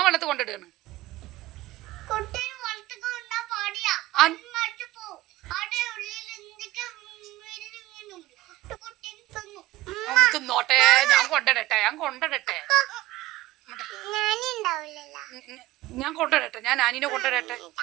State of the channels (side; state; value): left; quieter; 17.2 dB